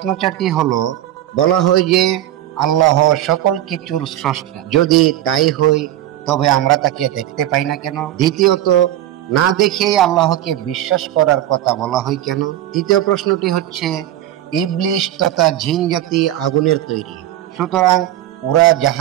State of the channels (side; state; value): left; quieter; 13.0 dB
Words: 4টি হলো, বলা হয় যে আল্লাহ সকল কিছুর স্রষ্টা, যদি তাই হয় তবে আমরা তাকে দেখতে পাই না কেন? দ্বিতীয়ত, না দেখেই আল্লাহকে বিশ্বাস করার কথা বলা হয় কেন? তৃতীয় প্রশ্নটি হচ্ছে, ইবলিশ তথা জিন জাতি আগুনের তৈরি, সুতরাং ওরা